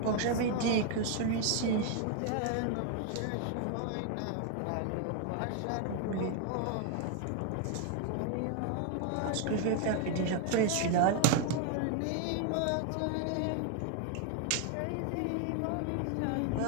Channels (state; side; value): different; both; correlation 0.00